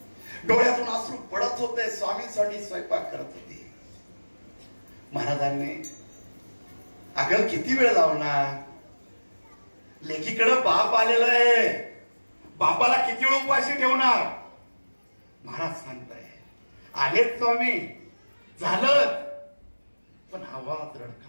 डोळ्यातून अश्रू पडत होते. स्वामींसाठी स्वयंपाक करत होते. महाराजांनी, अगं किती वेळ लावणार? लेकीकडे बाप आलेला आहे. बापाला किती वेळ उपाशी ठेवणार? महाराज सांगताय, आलेच स्वामी, झालं. पण आवाज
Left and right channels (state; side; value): inverted; both; correlation -1.00